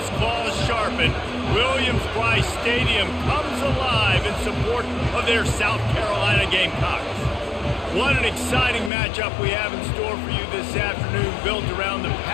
claws sharpened, Williams-Brice Stadium comes alive in support of their South Carolina Gamecocks. What an exciting matchup we have in store for you this afternoon, built around the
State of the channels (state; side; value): drops out; right; at 8.9 s